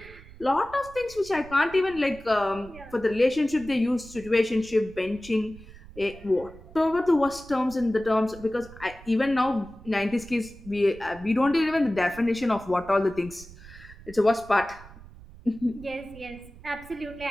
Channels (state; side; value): noise; right; rumble, 19 dB below the sound